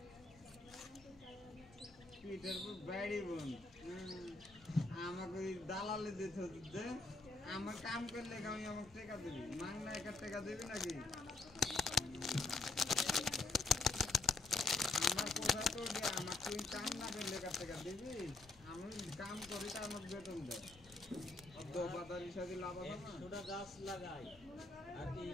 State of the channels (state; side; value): quieter; right; 3.3 dB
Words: আমাকে দালালে দিতে আমার কাম করলে আমি আমাকে টাকা দিবি মাংনা একা টাকা দিবি নাকি আমার কোথায় তো আমার তুই কাম না করলে একা টাকা দিবি আমি কাম করি তার আমাকে বেতন দেয় বাজার হিসাবে লাভ হবে না ছোটা গাছ লাগাই আর এই